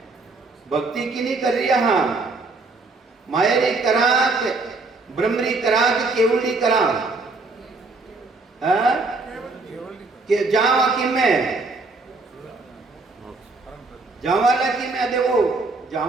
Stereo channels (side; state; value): left; quieter; 3.6 dB